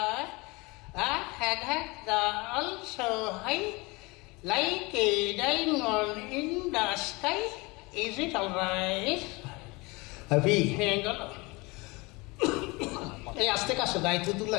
I had the also high, like a diamond in the sky. Is it alright? Happy, hang on. এই আস্তে কাছে গাইতে তো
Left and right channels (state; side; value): quieter; right; 25.3 dB